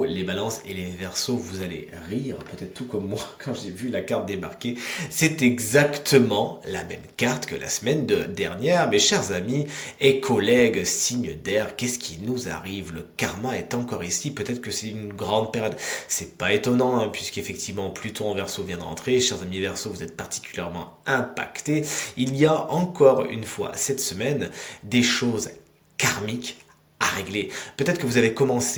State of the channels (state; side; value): identical; both; correlation 1.00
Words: les Balances et les Verseaux. Vous allez rire, peut-être tout comme moi, quand j'ai vu la carte débarquer. C'est exactement la même carte que la semaine dernière. Mes chers amis et collègues, signe d'air, qu'est-ce qui nous arrive? Le karma est encore ici. Peut-être que c'est une grande période. C'est pas étonnant, hein, puisqu'effectivement, Pluton en Verseau vient de rentrer. Chers amis Verseaux, vous êtes particulièrement impactés. Il y a encore une fois cette semaine des choses karmiques à régler. Peut-être que vous avez